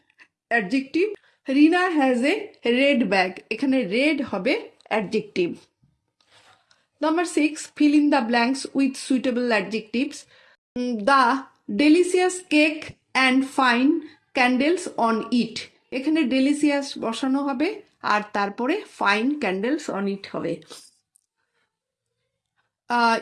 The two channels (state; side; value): identical; both; correlation 1.00